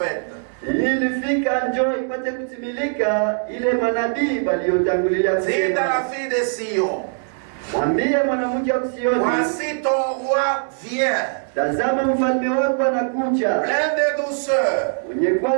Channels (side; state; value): left; silent; digital silence